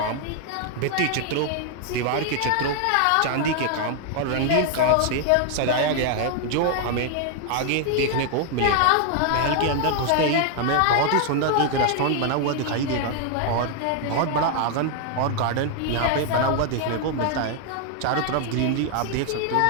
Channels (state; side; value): different; both; correlation 0.00